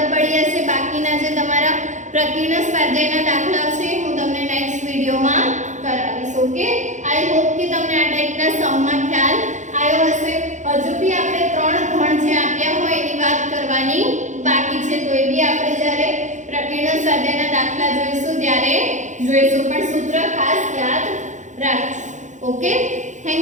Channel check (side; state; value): left; late; 0.35 ms